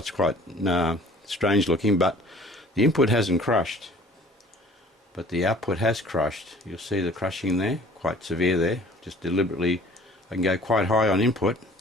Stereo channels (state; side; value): normal; both; correlation 0.50